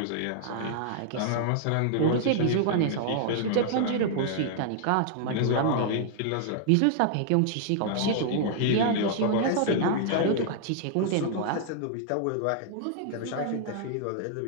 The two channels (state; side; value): different; both; correlation -0.01